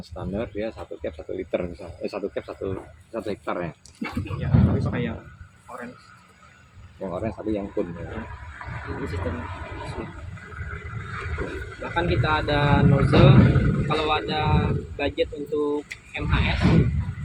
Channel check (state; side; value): identical; both; correlation 1.00